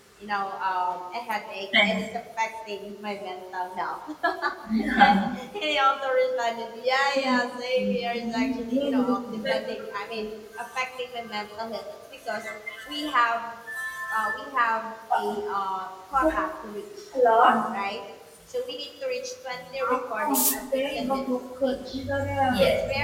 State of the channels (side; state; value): both; identical; correlation 1.00